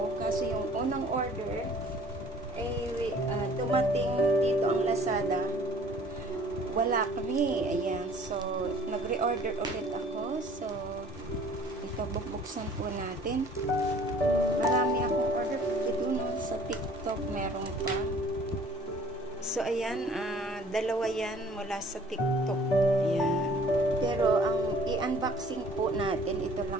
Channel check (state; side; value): normal; both; correlation 0.52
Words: Kasi yung unang order, dumating dito ang Lazada. Wala kami. Ayan. So, nag-reorder ulit ako. So, ito, bubuksan po natin. Marami akong order. Ito, no, sa TikTok meron pa. So, ayan, dalawa yan mula sa TikTok. Ayan. Pero, ang i-unboxing po natin, ito